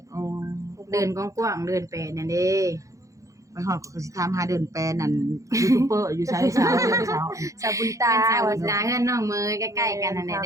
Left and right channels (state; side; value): late; left; 0.16 ms